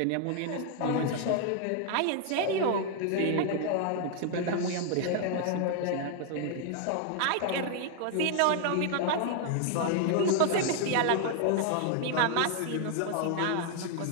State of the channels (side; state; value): both; different; correlation 0.00